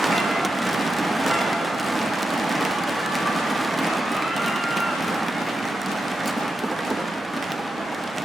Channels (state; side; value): normal; both; correlation 0.88